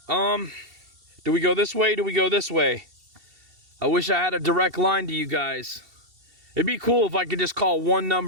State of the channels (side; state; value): left; late; 2.7 ms